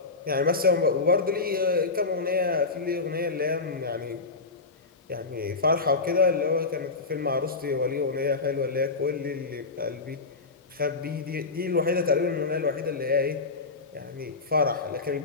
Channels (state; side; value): quieter; right; 3.9 dB